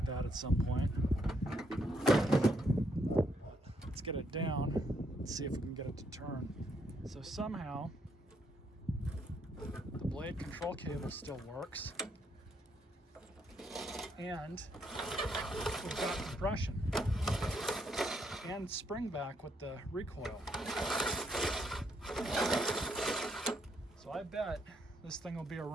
that at some point. Let's get it down and see if we can get it to turn. So somehow the blade control cable still works, and we've got compression and spring back with the recoil. So I bet this thing will be a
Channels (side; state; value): both; normal; correlation 0.74